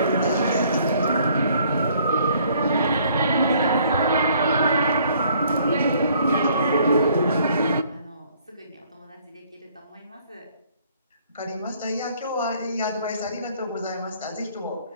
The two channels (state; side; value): inverted; both; correlation -0.62